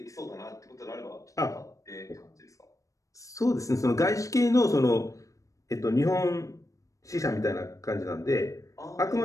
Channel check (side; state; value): right; late; 0.16 ms